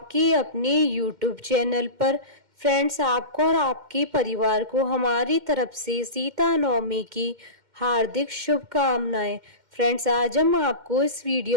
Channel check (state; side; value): late; left; 2.1 ms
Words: अपने यूट्यूब चैनल पर। फ्रेंड्स, आपको और आपके परिवार को हमारी तरफ से सीता नवमी की हार्दिक शुभकामनाएं। फ्रेंड्स, आज हम आपको इस